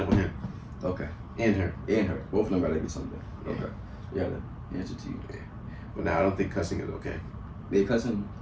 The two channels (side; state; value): both; identical; correlation 1.00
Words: with him. Okay. And her. And her. Both of them gotta get something. Okay. Yeah, the answer to you. But now I don't think cussing is okay. They cussing?